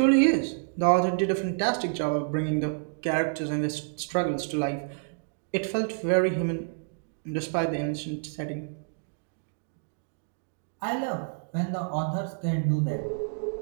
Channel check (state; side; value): silent; left; digital silence